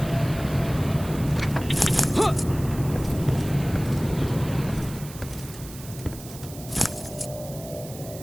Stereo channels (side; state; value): right; noise; hiss, 16 dB below the sound